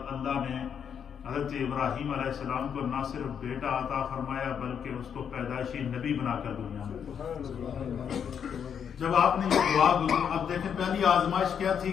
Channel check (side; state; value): right; quieter; 7.8 dB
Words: اللہ نے حضرت ابراہیم علیہ السلام کو نہ صرف بیٹا عطا فرمایا بلکہ اس کو پیدائشی نبی بنا کر دنیا میں۔ جب آپ نے یہ دعا اب دیکھیں پہلی آزمائش کیا تھی